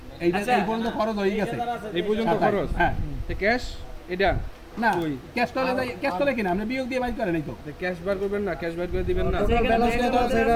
এইটা এই পর্যন্ত খরচ হয়ে গেছে, এই পর্যন্ত খরচ। হ্যাঁ ক্যাশ এটা না, ক্যাশ তোলে কিনা আপনি বিয়োগ দিয়ে বাইর করেন, এই তো ক্যাশ বার করবেন না, ক্যাশ বার করে দিবেন না, 14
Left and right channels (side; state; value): both; identical; correlation 1.00